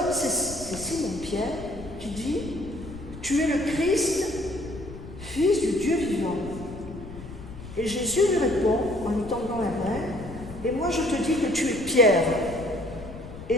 c'est Simon-Pierre qui dit « Tu es le Christ, fils du Dieu vivant. » Et Jésus lui répond en lui tendant la main « Et moi je te dis que tu es Pierre. Et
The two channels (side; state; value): left; noise; rumble, 13 dB below the sound